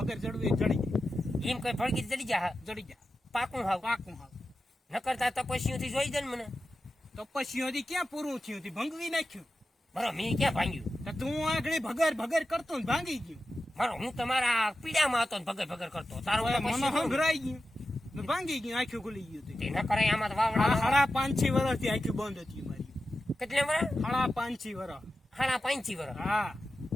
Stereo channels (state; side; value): normal; both; correlation 0.92